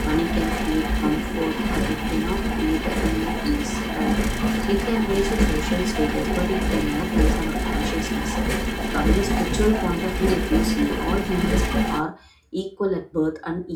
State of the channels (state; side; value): identical; both; correlation 1.00